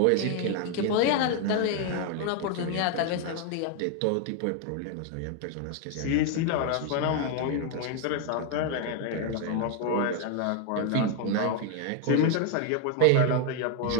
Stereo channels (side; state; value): both; different; correlation 0.01